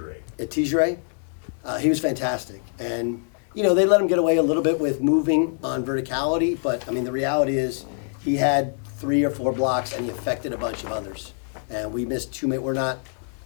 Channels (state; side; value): silent; right; 62 dB below the other